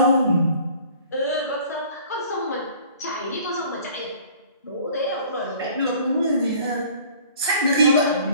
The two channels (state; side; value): inverted; both; correlation -0.51